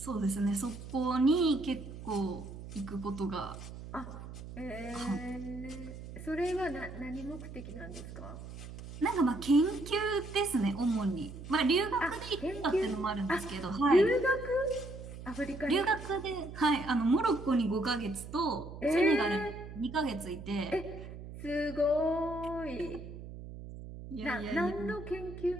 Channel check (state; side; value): noise; right; hum, 12 dB below the sound